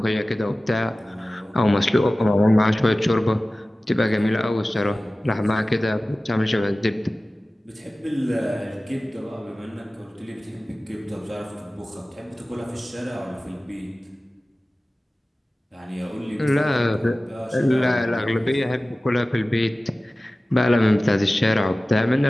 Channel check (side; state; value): both; normal; correlation 0.97